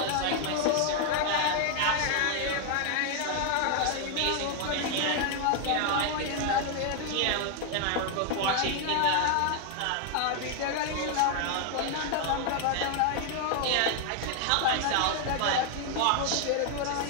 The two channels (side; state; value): both; different; correlation 0.00